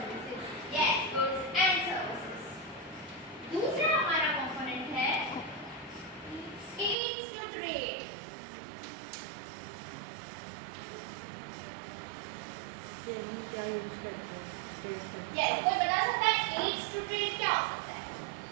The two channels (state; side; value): drops out; left; at 7.0 s